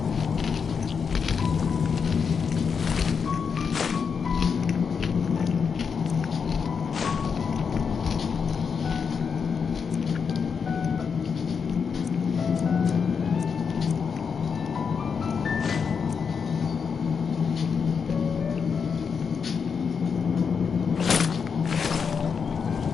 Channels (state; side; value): quieter; right; 6.1 dB